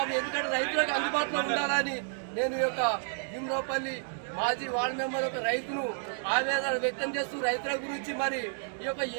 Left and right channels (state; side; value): silent; left; 57 dB below the other